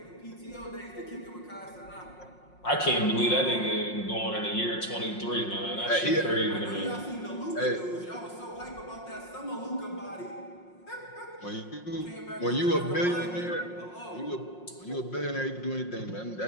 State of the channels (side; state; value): right; late; 5.6 ms